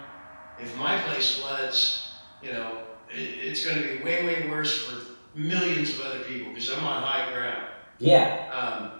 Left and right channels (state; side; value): inverted; both; correlation -1.00